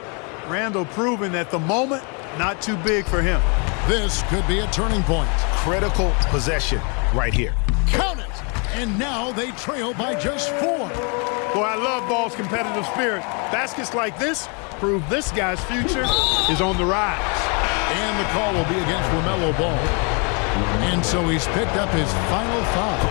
Randall proving that the moment, not too big for him. This could be a turning point. Critical possession right here. Count it! And now they trail by just 4. Boy, I love Ball's competitive spirit. Baskets like this prove this guy's future is on the rise. And the call will be against LaMelo Ball. And so he's picked up his final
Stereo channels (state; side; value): quieter; right; 34.9 dB